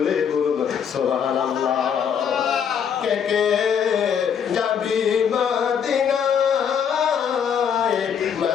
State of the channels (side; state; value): right; quieter; 7.6 dB